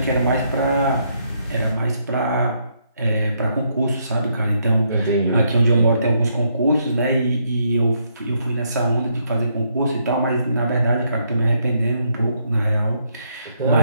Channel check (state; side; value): inverted; both; correlation -0.75